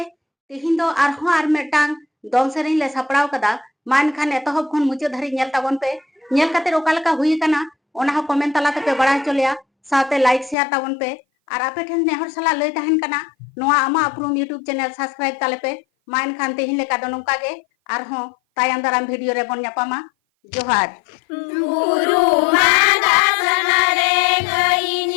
तेहिं दो आरहों आर मेटांग दोन सेरें ले सपड़ाव कदा मान खान एतहब खन मुचे धरी नेल ताबन पे नेल काते ओका लेका हुई कना ओना हो कमेंट तला ते पे बड़ा चलिया साथे लाइक शेयर ताबन पे और आपे ठेन नेहर सला लई तहन कना नोआ आमा अपरूम यूट्यूब चैनल सब्सक्राइब ताले पे मान खान तेहिं लेका दो नोका गे आरहों तायम दाराम वीडियो रे बन ᱧᱟᱯᱟᱢᱟ जोहार गुरु मादा सनरे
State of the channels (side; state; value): right; drops out; at 10.6 s